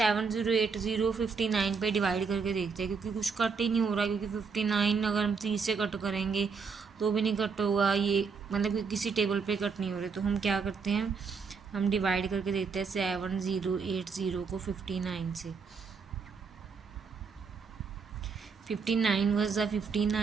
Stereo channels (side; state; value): left; quieter; 5.3 dB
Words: 59 पे डिवाइड करके देखते हैं, क्योंकि कुछ कट ही नहीं हो रहा, क्योंकि 59 अगर हम 30 से कट करेंगे तो भी नहीं कट होगा, ये मतलब कि किसी टेबल पे कट नहीं हो रहे। तो हम क्या करते हैं, हम डिवाइड करके देखते हैं 7080 को 59 से, 59 वज द